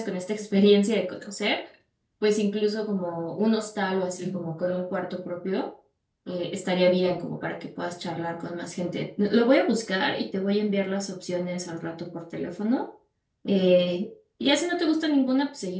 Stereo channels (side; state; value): both; identical; correlation 1.00